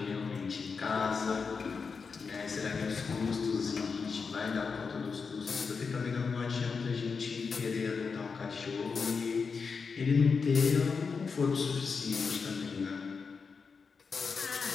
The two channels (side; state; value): right; quieter; 5.2 dB